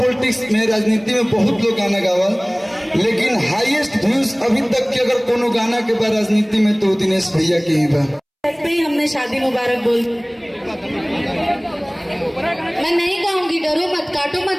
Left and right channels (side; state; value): both; identical; correlation 1.00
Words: में, राजनीति में बहुत लोग गाना गावा, लेकिन हाईएस्ट व्यूज अभी तक के अगर कोनो गाना के बाद राजनीति में तो दिनेश भैया के ही बा। हमने शादी मुबारक बोल, मैं नहीं गाऊंगी, डरो मत, काटो